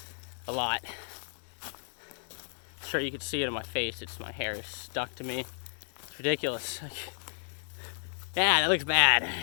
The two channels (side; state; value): right; silent; digital silence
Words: a lot. Sure, you could see it on my face. It's my hair is stuck to me. It's ridiculous. Yeah, that looks bad.